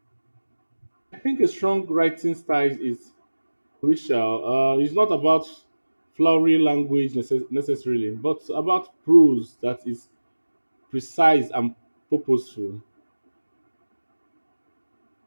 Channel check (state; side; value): inverted; both; correlation -1.00